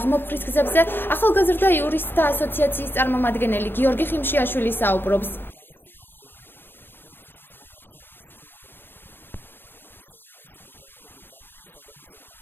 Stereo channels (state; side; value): late; right; 0.098 ms